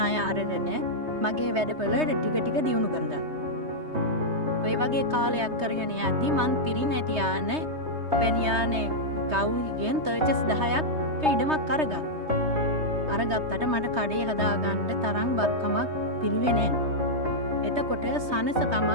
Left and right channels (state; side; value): late; left; 3.2 ms